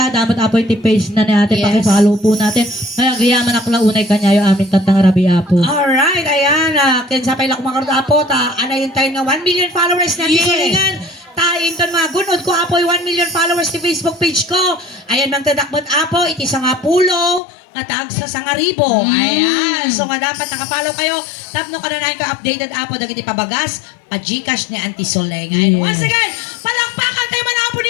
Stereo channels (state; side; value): drops out; right; at 17.4 s